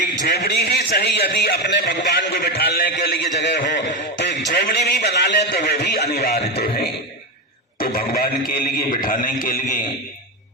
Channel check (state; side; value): normal; both; correlation 0.13